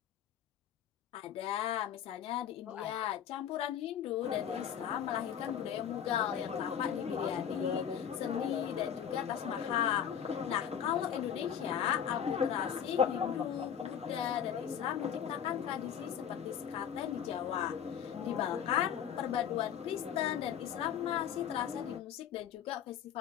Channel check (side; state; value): right; quieter; 8.8 dB